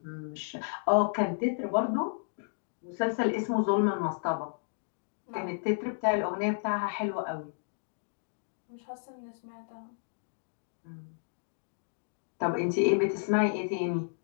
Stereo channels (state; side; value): silent; right; digital silence